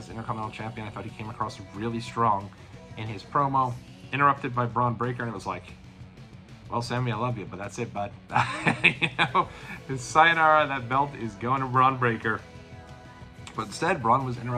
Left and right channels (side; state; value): both; identical; correlation 1.00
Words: Intercontinental Champion. I thought he came across really strong in his promo, interrupted by Bron Breakker, and it was like, well, Sami, I love you, but that's it, bud. His sayonara, that belt is going to Bron Breakker. But instead, Bron was